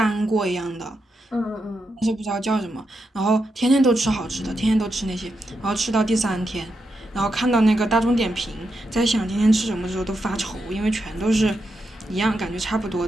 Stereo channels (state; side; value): normal; both; correlation 0.85